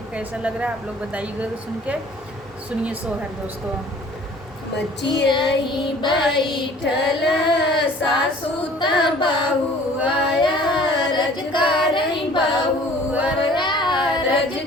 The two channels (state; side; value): normal; both; correlation 0.51